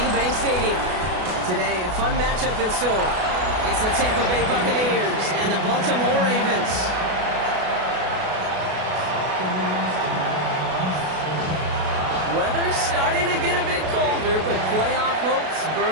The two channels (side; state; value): left; late; 32 ms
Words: Bank Stadium. Today, a fun matchup in store. It's the Tampa Bay Buccaneers and the Baltimore Ravens. Weather's starting to get a bit colder, but playoff hopes